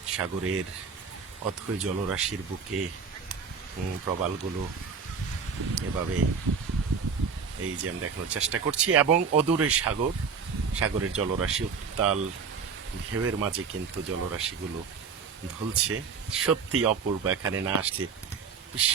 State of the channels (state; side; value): quieter; left; 5.8 dB